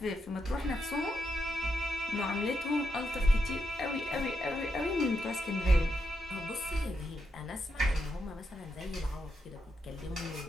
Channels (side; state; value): both; normal; correlation 0.83